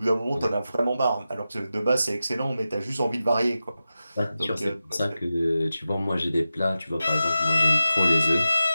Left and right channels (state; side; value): inverted; both; correlation -0.93